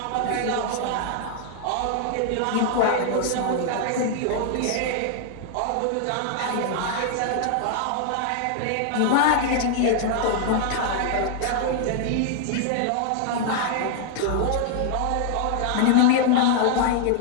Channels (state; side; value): different; both; correlation 0.00